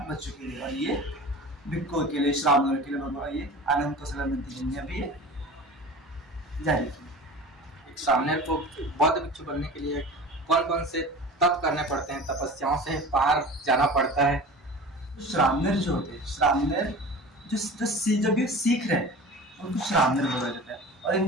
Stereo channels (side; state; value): both; normal; correlation 0.37